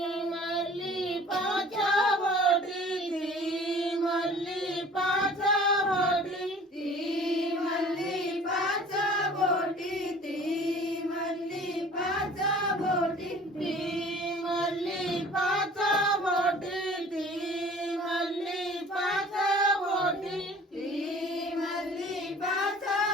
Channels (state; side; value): normal; both; correlation 0.47